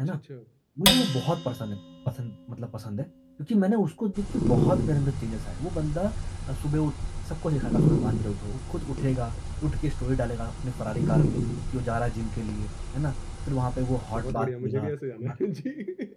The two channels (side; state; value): both; identical; correlation 1.00